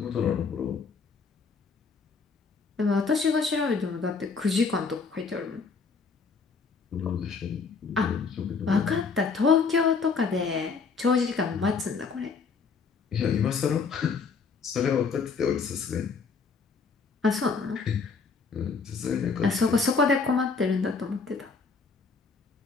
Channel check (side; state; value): right; quieter; 5.0 dB